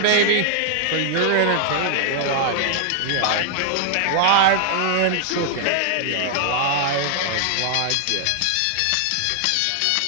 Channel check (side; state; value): both; different; correlation 0.00